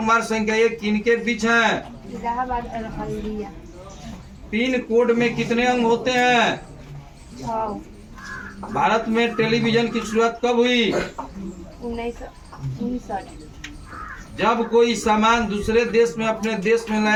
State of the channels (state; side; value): identical; both; correlation 1.00